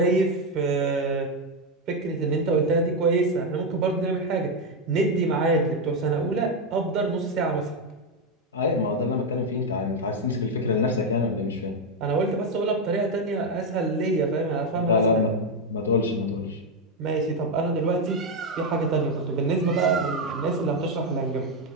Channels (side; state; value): both; normal; correlation 0.05